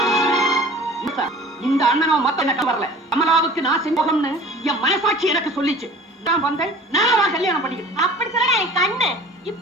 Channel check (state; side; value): normal; both; correlation 0.44